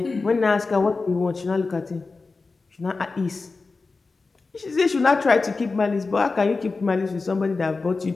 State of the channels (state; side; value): quieter; right; 4.0 dB